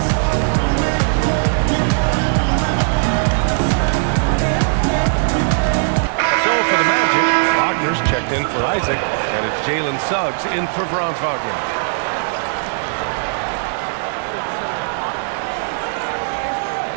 Checked in for Isaac, and it's Jalen Suggs in for Franz Wagner.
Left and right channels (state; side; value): silent; left; digital silence